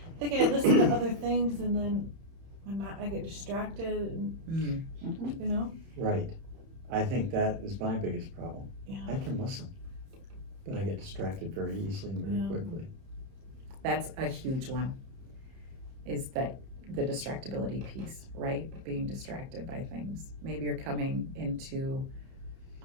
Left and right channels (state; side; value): late; left; 30 ms